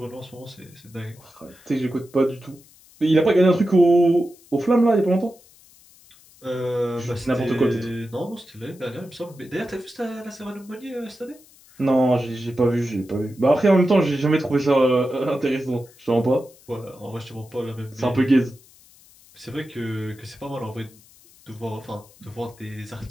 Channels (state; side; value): noise; left; hiss, 26 dB below the sound